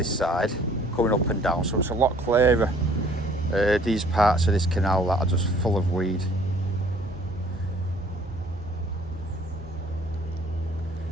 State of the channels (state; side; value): normal; both; correlation 0.57